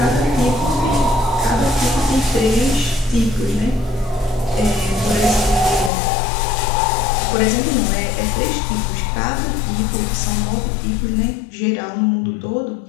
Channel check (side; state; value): right; drops out; at 5.9 s